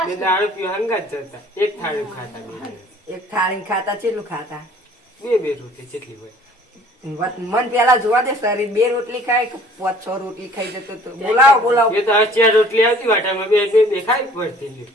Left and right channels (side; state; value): both; normal; correlation 0.53